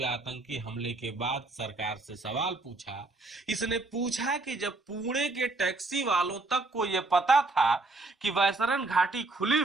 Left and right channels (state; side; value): quieter; left; 3.2 dB